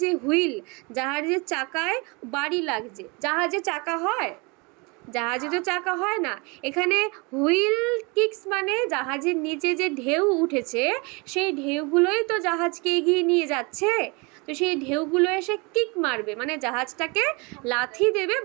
যে হুইল, জাহাজের চাকায় বাড়ি লাগছে। জাহাজে চাকা হয়? জাহাজে তো চাকা হয় না। এখানে হুইল কিক্স মানে জাহাজের নিচে যে ঢেউ উঠেছে, সেই ঢেউগুলোই তো জাহাজকে এগিয়ে নিয়ে যাচ্ছে। তো সেই ঢেউগুলো এসে কিক মারবে, মানে জাহাজটাকে লাথি দেবে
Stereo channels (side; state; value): left; quieter; 28.8 dB